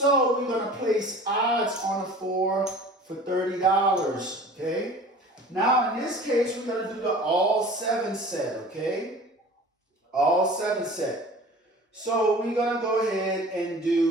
we're going to place odds on a 4 for $30, okay? Now in this case, we're going to do the all 7 set, okay? All 7 set. So we're going to go ahead and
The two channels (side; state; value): both; normal; correlation 0.43